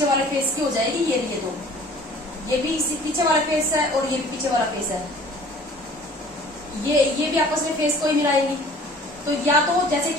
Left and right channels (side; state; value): both; normal; correlation 0.50